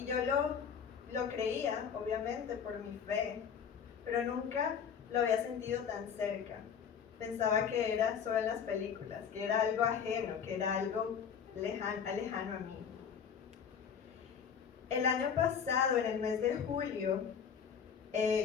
yo lo creía, obviamente, por mi fe, pero nunca lo había sentido tan cerca. Pensaba que era solo en las películas, que era algo ajeno, que era algo lejano a mí. El año pasado, en el mes de julio,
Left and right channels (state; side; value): quieter; right; 7.3 dB